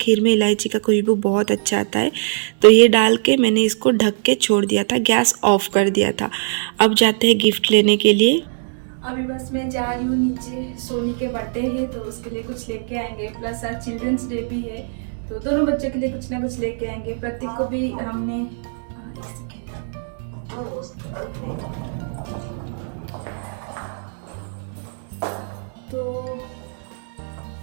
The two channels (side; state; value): left; silent; digital silence